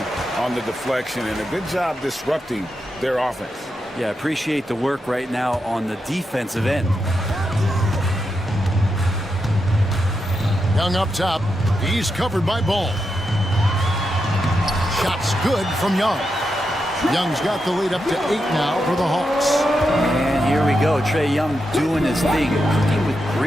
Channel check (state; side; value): normal; both; correlation 0.86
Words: on the deflection and a good job disrupting their offense. Yeah, appreciate the work right now on the defensive end. Young up top. He's covered by Ball. Shot's good from Young. Young's got the lead up to 8 now for the Hawks. And here we go. Trae Young doing his thing. Cooking with